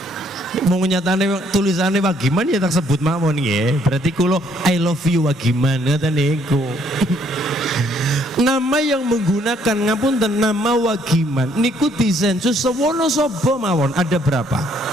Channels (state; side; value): normal; both; correlation 0.66